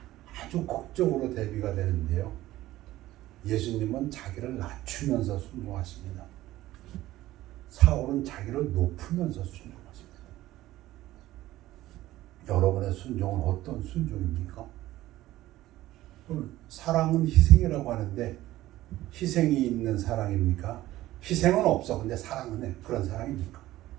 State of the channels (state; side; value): quieter; left; 15.8 dB